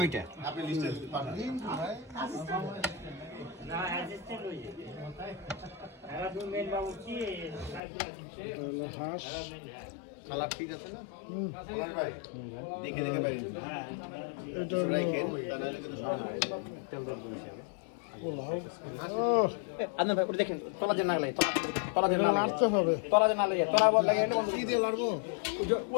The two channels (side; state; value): right; drops out; at 7.8 s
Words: এটা হলো হাঁস। কালার ঠিক আছে না? ভাই দেখে দেখে বাইরে এটা হলো পোলাও। ও, আপনার ভাই ওটা দেখেন, তলা যে না লাগে, তলা যে এটা না লাগে, নাড়তে হবে। তলা যে না লাগে, তলা বল লাগে এটা কি দিয়ে লাড়বো?